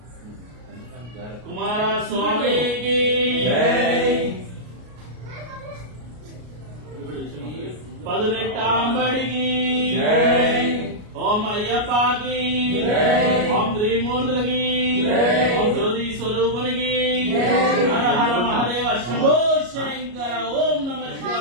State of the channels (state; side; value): late; left; 33 ms